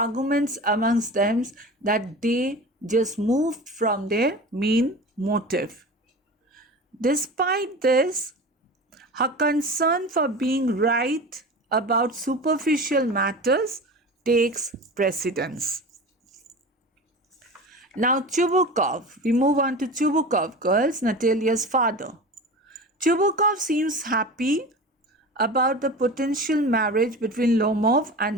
amongst them that they just moved from their main motive. Despite this, her concern for being right about superficial matters takes precedence. Now Chubukov, we move on to Chubukov, girls, Natalia's father. Chubukov seems happy about the potential marriage between Lomov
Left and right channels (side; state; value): both; normal; correlation 0.33